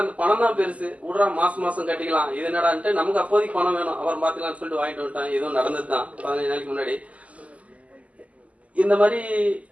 அந்த பணம் தான் பெருசு, விடுறா மாசம் கட்டிக்கலாம், இது என்னடான்ட்டு நமக்கு அப்போதைக்கு பணம் வேணும், அவர் பாத்துக்கலாம்னு சொல்லிட்டு வாங்கிட்டு வந்துட்டேன். இதுவும் நடந்தது தான் 15 நாளைக்கு முன்னாடி. இந்த மாதிரி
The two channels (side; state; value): left; late; 0.069 ms